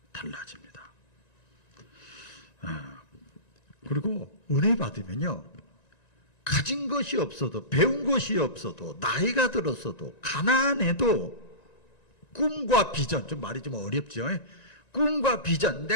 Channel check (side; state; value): right; late; 1.9 ms